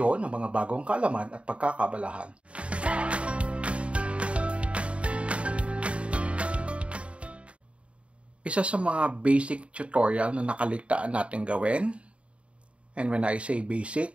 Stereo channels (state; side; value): late; left; 0.061 ms